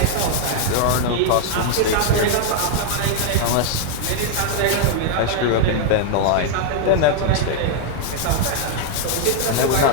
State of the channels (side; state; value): both; different; correlation 0.00